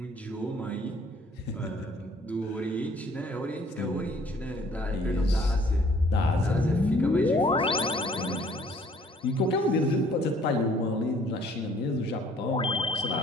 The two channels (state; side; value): normal; both; correlation 0.59